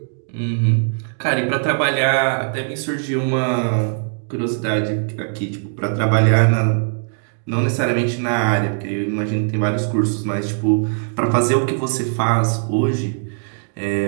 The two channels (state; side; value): silent; left; digital silence